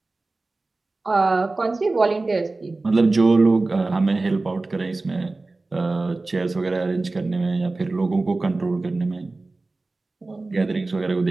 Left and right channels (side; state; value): left; quieter; 3.3 dB